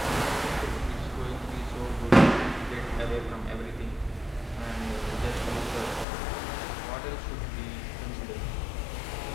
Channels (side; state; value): right; drops out; at 6.1 s